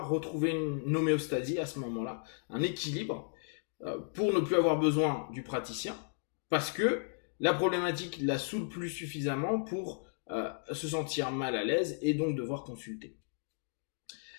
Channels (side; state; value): right; silent; digital silence